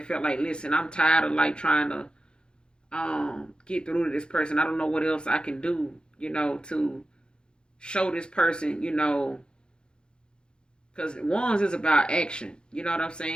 felt like, listen, I'm tired of like trying to get through to this person. I don't know what else I can do, to show this person, because wands is about action. You know what I'm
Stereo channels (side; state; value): right; late; 0.050 ms